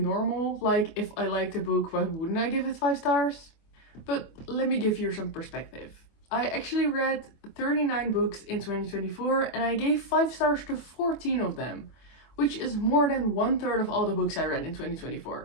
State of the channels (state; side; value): late; right; 24 ms